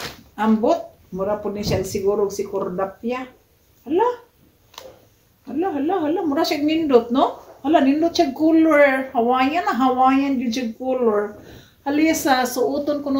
ambot. Mura po ni siya siguro si Cordapia. Hala. Mura siya nindot, no? Hala, nindot siya color. Hawaiian yun siya color. Halisa, suoton ko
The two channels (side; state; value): both; identical; correlation 1.00